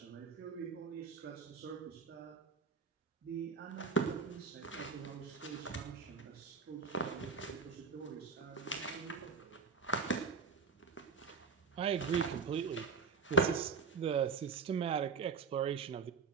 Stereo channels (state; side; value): quieter; left; 5.4 dB